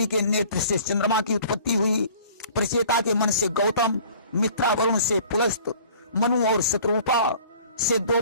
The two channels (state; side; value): inverted; both; correlation -0.49